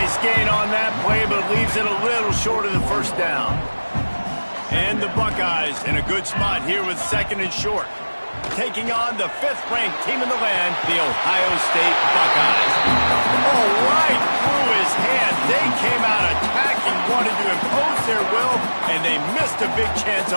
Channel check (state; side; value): inverted; both; correlation -1.00